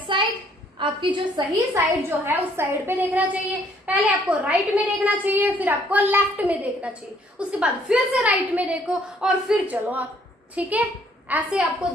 side, आपकी जो सही साइड जो है उस साइड पे देखना चाहिए। पहले आपको राइट में देखना चाहिए, फिर आपको लेफ्ट में देखना चाहिए, उसके बाद फिर से राइट में देखो और फिर चलो आप। ठीक है, ऐसे आपको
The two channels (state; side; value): normal; both; correlation 0.64